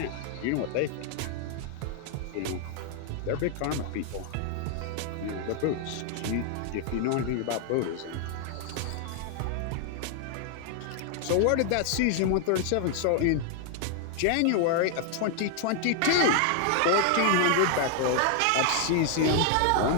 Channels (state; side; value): different; both; correlation 0.00